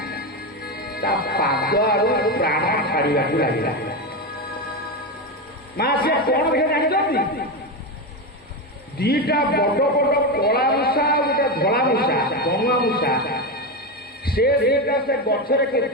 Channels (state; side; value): normal; both; correlation 0.14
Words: ତା ପାଦ ଆଡୁ ପ୍ରାଣ ଛାଡ଼ିବାକୁ ଲାଗିଲା। ମା ସିଏ କଣ ଦେଖେ ଜାଣିଛନ୍ତି? ଦିଟା ବଡ ବଡ କଳା ମୂଷା ଆଉ ଗୋଟେ ଧଳା ମୂଷା, ଗଣୁଆ ମୂଷା। ସେ ଦିଟା ସେ ଗଛରେ